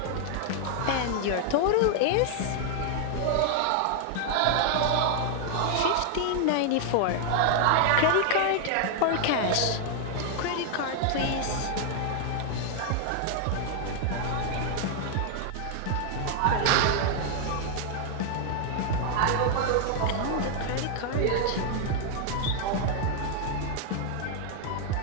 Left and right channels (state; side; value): different; both; correlation 0.00